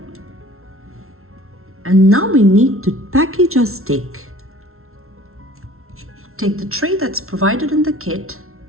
And now we need to package our steak. Take the tray that's provided in the kit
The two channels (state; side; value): late; left; 0.62 ms